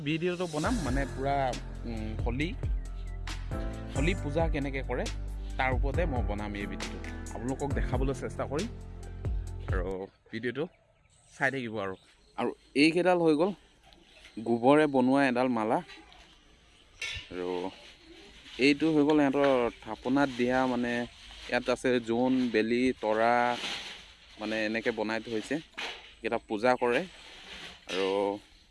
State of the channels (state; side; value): identical; both; correlation 1.00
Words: ভিডিঅ'টো বনাম মানে পুৰা হোলী পূজা কেনেকৈ কৰে তাৰ ওপৰতে মই বনাম এই ভিডিঅ'টো আপোনালোকক দেখাবলৈ চেষ্টা কৰিম আৰু ভিডিঅ'টো চাই থাকিব আৰু এইকেইডাল হৈ গ'ল গোবৰে বনোৱা এডাল মালা আৰু এইটো হৈ গ'ল সিহঁতৰ থাপনাত দিয়া মানে ইয়াত আছে জোন বেলি তৰা মানে এনেকৈ বনাই থৈছে এইকেইটা পূজা কৰে